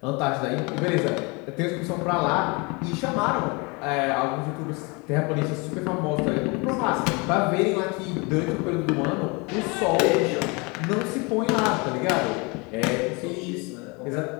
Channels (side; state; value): right; quieter; 28.7 dB